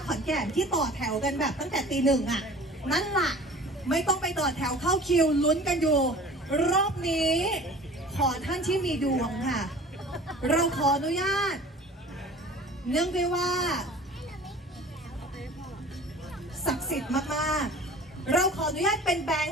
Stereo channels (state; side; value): normal; both; correlation 0.44